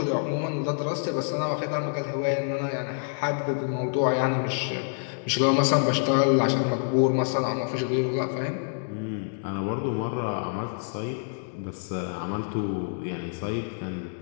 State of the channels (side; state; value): right; silent; digital silence